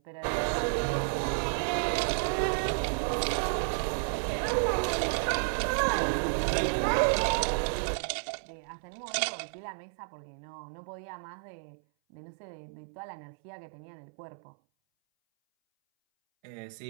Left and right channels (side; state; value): left; silent; 57 dB below the other